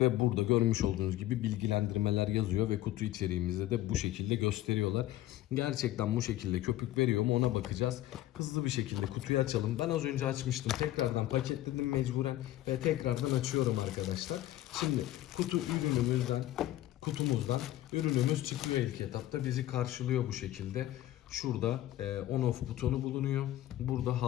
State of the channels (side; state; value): right; quieter; 14.6 dB